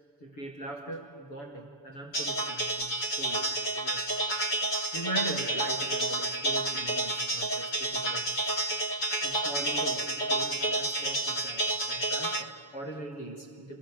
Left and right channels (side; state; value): right; late; 7.0 ms